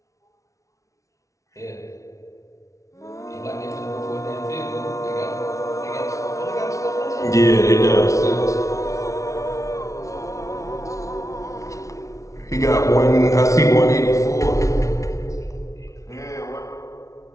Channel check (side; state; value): right; late; 0.15 ms